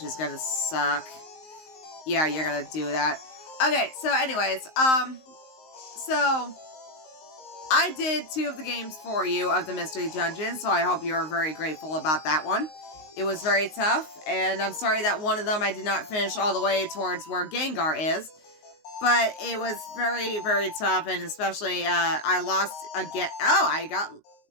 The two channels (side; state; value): right; late; 19 ms